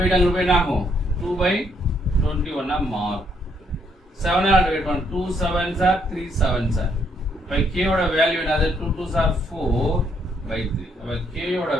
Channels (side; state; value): both; normal; correlation 0.72